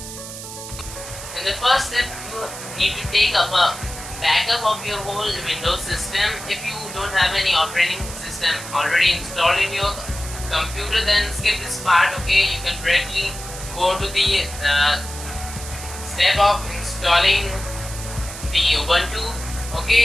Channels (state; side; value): noise; right; hiss, 11 dB below the sound